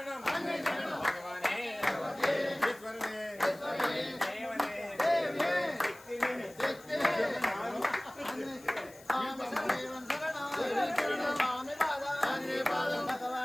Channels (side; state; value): left; noise; hiss, 22 dB below the sound